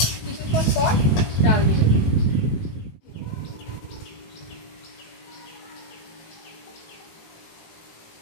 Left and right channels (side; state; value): right; late; 19 ms